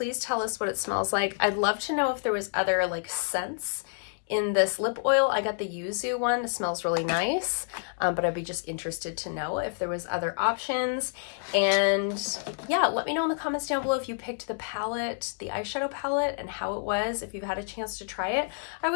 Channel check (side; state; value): right; silent; digital silence